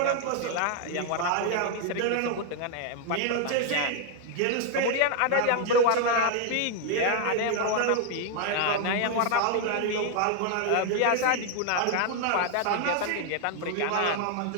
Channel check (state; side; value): different; both; correlation 0.00